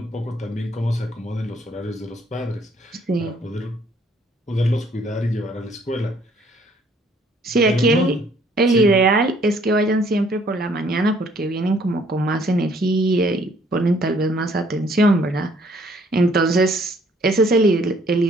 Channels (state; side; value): normal; both; correlation 0.62